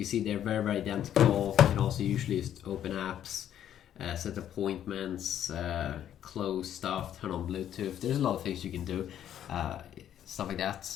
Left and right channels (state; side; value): quieter; right; 10.5 dB